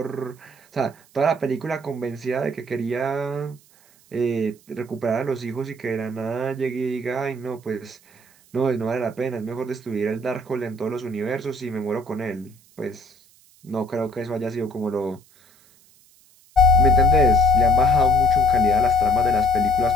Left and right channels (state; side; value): noise; right; hiss, 29 dB below the sound